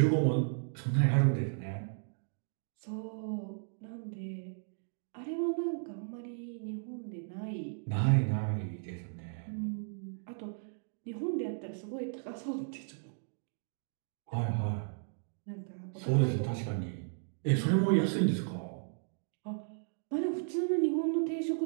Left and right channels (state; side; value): silent; left; digital silence